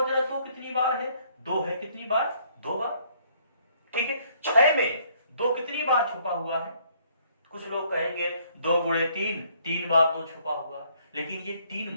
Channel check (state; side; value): inverted; both; correlation -0.65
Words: जरा 2 कितनी बार है? 2 है। कितनी बार? 2 बार। 6 में 2 कितनी बार छुपा हुआ है? कुछ लोग कहेंगे 2 गुणे 3, 3 बार 2 छुपा हुआ है, लेकिन ये 3